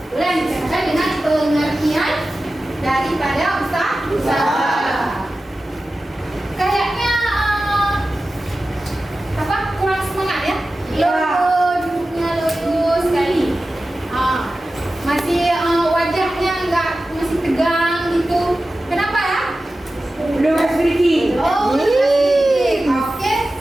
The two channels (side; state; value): both; normal; correlation 0.94